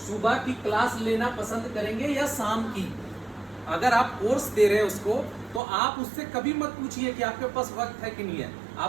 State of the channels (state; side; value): drops out; left; at 5.6 s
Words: की क्लास लेना पसंद करेंगे या शाम की? अगर आप कोर्स दे रहे हैं उसको, तो आप उससे कभी मत पूछिए कि आपके पास वक्त है कि नहीं है।